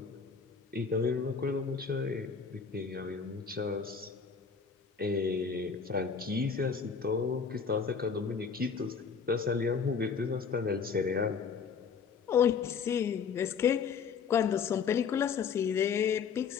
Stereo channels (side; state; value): right; quieter; 6.0 dB